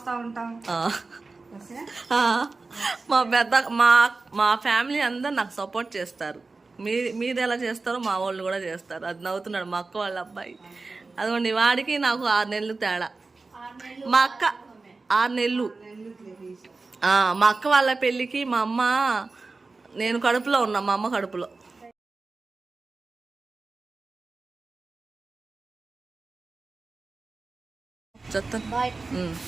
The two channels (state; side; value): quieter; left; 3.8 dB